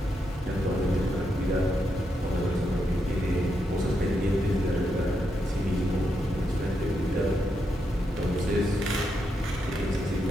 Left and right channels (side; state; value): both; normal; correlation 0.82